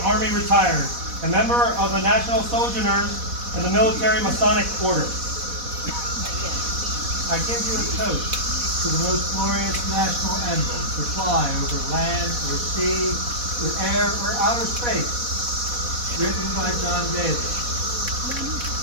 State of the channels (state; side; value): late; left; 4.1 ms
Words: Army retired, a member of the National Sojourners and the Military Masonic Order. I give you a toast to the most glorious national emblem to fly over land or sea, or air or outer space, written by John Daly.